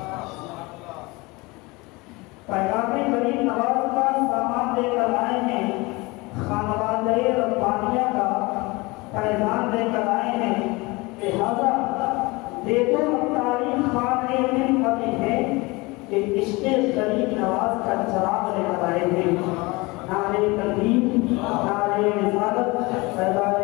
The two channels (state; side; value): quieter; right; 24.1 dB